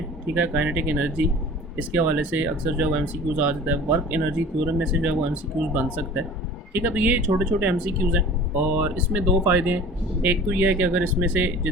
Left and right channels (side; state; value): both; normal; correlation 0.43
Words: ठीक है, काइनेटिक एनर्जी, इसके हवाले से अक्सर जो है वो एमसीक्यूज़ आ जाता है। वर्क एनर्जी थ्योरम में से जो है वो एमसीक्यूज़ बन सकता है, ठीक है। तो ये छोटे छोटे एमसीक्यूज़ हैं और इसमें दो फ़ायदे हैं। एक तो ये है कि अगर इसमें से